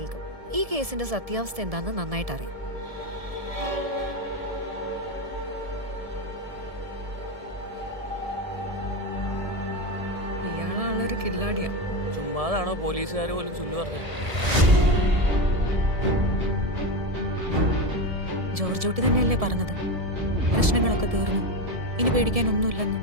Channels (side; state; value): left; late; 1.7 ms